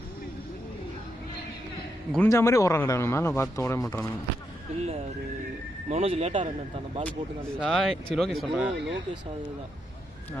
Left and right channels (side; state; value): both; normal; correlation 0.82